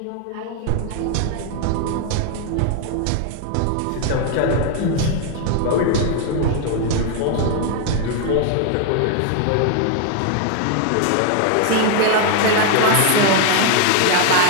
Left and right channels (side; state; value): both; different; correlation 0.00